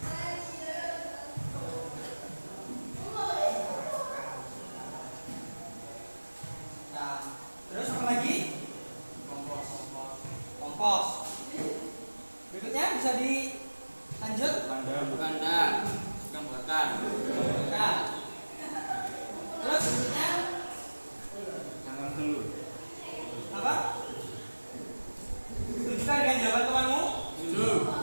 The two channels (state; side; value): inverted; both; correlation -1.00